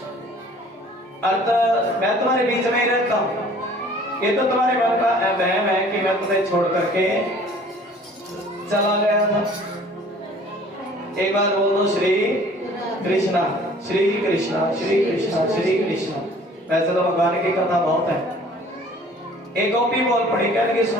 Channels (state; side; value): normal; both; correlation 0.52